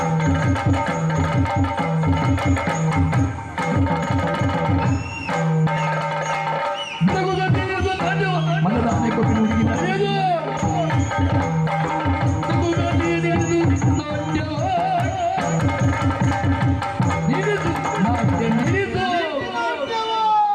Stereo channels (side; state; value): both; identical; correlation 1.00